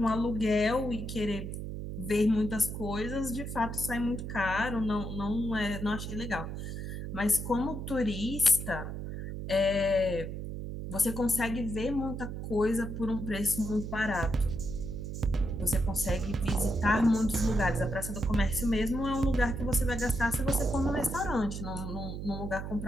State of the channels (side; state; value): right; noise; hum, 6 dB below the sound